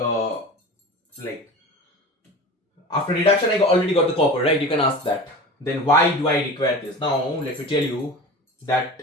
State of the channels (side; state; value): both; normal; correlation 0.34